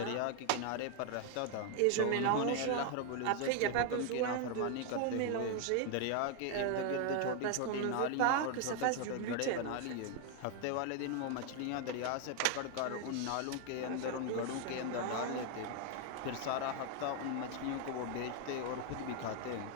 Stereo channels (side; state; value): both; different; correlation 0.01